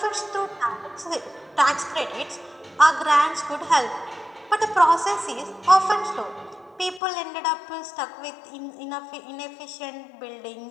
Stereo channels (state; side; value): drops out; right; at 7.0 s